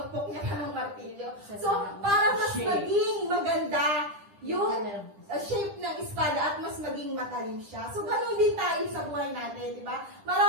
niya pa ng martilyo. So, para mas maging maganda yung shape ng espada at mas maging matalim siya. So, ganun din tayo sa buhay natin, di ba?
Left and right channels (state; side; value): late; left; 10 ms